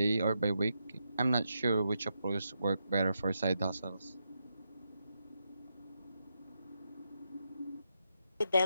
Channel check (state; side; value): inverted; both; correlation -0.84